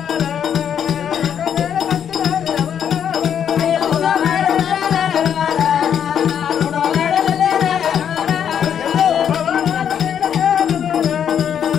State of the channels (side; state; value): right; quieter; 8.6 dB